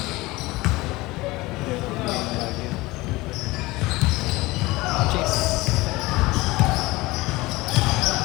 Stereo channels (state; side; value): quieter; right; 20.9 dB